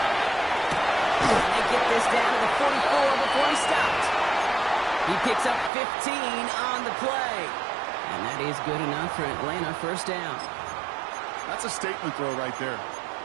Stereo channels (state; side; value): drops out; left; at 5.7 s